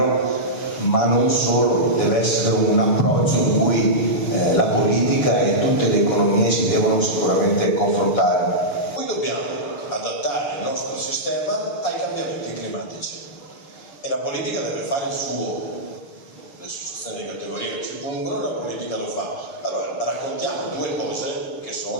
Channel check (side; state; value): right; late; 7.1 ms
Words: ma non solo, deve essere un approccio in cui la politica e tutte le economie si devono sicuramente confrontare. Noi dobbiamo adattare il nostro sistema ai cambiamenti climatici e la politica deve fare il suo. Le associazioni di categoria che ci pongono, la politica lo fa. Allora raccontiamo due cose che